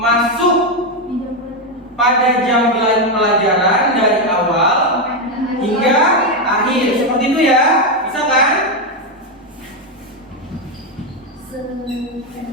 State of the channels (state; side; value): normal; both; correlation 0.06